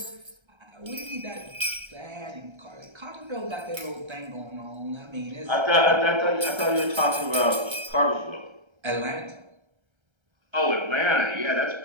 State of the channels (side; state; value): left; late; 1.3 ms